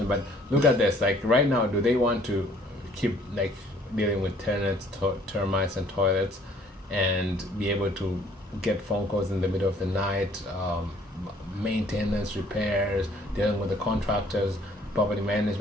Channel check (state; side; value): normal; both; correlation 0.59